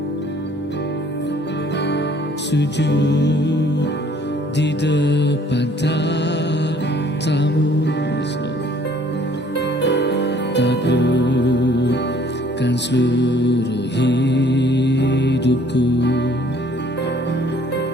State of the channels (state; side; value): normal; both; correlation 0.58